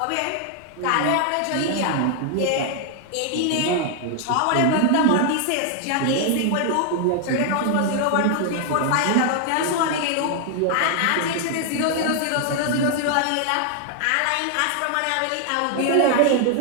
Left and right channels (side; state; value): both; different; correlation 0.00